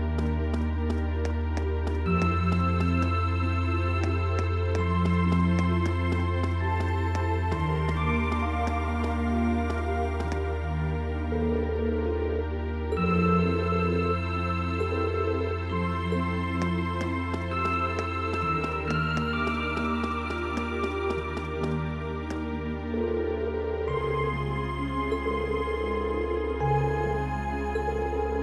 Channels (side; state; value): both; identical; correlation 1.00